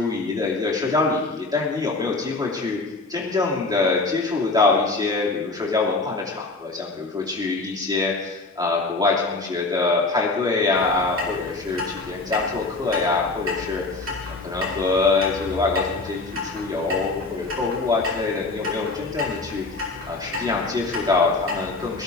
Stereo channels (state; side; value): quieter; right; 3.4 dB